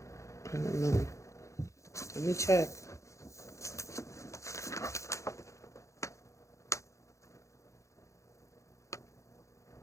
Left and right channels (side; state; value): right; late; 0.15 ms